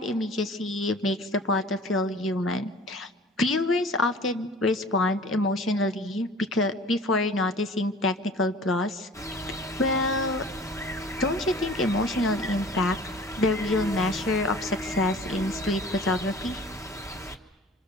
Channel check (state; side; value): normal; both; correlation 0.45